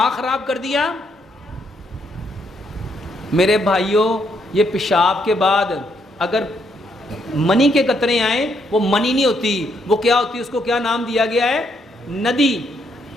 خراب کر دیا. میرے بھائیوں یہ پیشاب کے بعد اگر منی کے قطرے آئیں، وہ منی نہیں ہوتی، وہ کیا ہوتی ہے؟ اس کو کیا نام دیا گیا ہے؟ ندی.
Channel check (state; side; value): normal; both; correlation 0.74